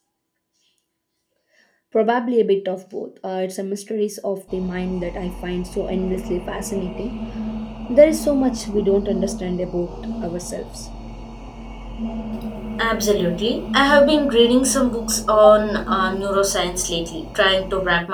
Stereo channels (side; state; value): both; identical; correlation 1.00